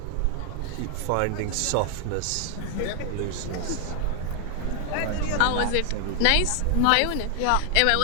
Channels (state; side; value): different; both; correlation 0.00